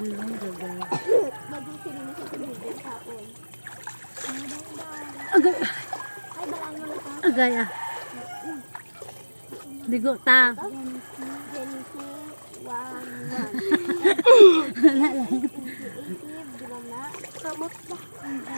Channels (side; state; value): both; inverted; correlation -1.00